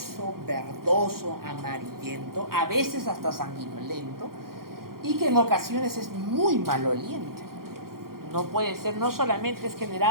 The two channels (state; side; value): late; left; 0.93 ms